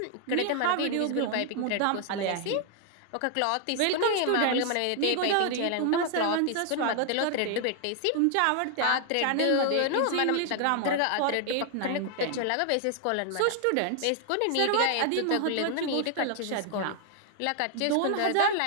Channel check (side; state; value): both; different; correlation 0.00